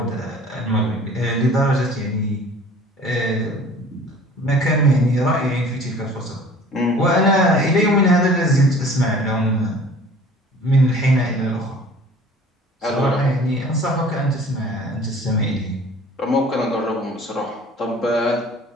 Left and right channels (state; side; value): normal; both; correlation 0.47